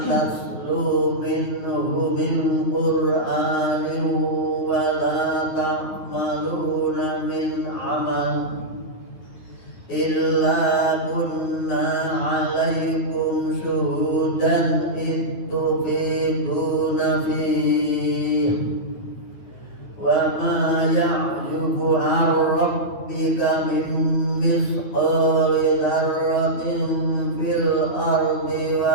minhu min Qur'anin wa la ta'maluna min amal illa kunna 'alaikum syuhudan ittufiduna fihi wa ma ya'jubu 'an rabbika min misqali dzarratin fil ardi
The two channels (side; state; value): right; late; 9.4 ms